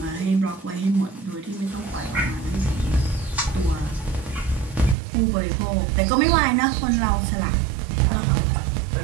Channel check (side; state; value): left; drops out; at 5.0 s